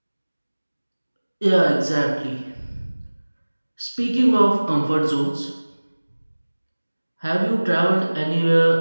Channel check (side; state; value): both; inverted; correlation -1.00